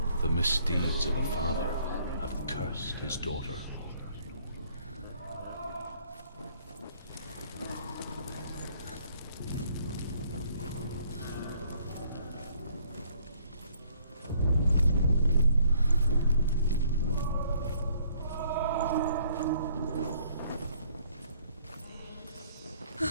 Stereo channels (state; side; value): inverted; both; correlation -0.63